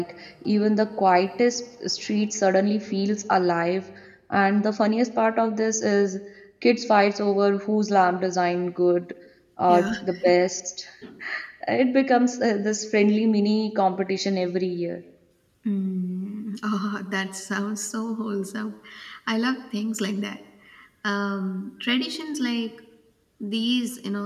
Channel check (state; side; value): identical; both; correlation 1.00